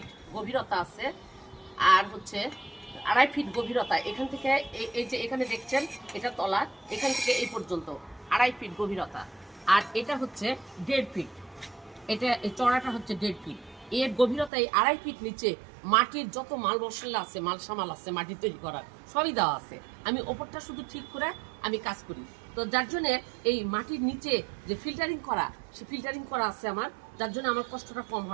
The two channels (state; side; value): drops out; left; at 14.5 s